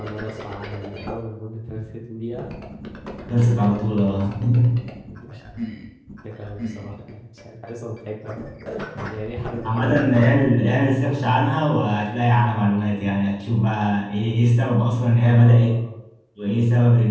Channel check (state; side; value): identical; both; correlation 1.00